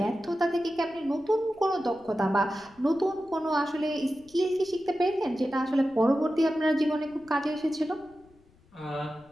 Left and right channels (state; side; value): noise; left; rumble, 29 dB below the sound